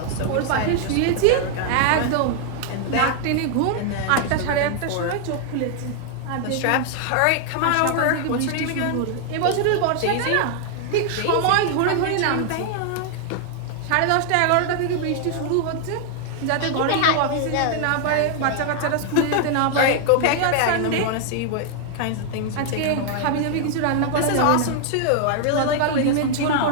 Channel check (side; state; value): both; different; correlation 0.00